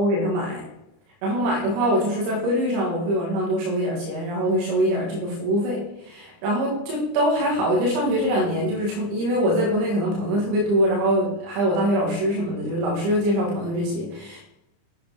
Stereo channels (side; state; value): left; late; 30 ms